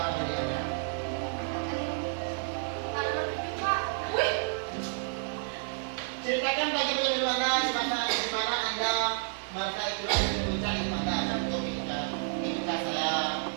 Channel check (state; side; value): silent; left; 58 dB below the other